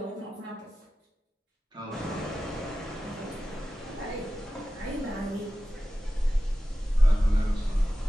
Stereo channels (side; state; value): both; normal; correlation 0.94